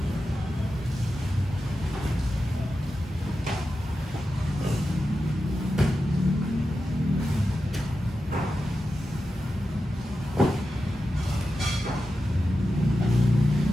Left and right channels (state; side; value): normal; both; correlation 0.91